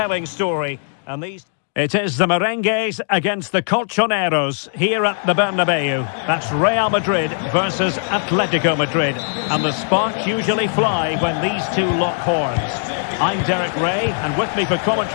story. And it is the Merengues against the Colchoneros here at the Bernabeu. That's Real Madrid versus Atletico Madrid. And the sparks usually fly when these two lock horns. I'm Derek Ray, and with me for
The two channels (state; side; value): silent; right; digital silence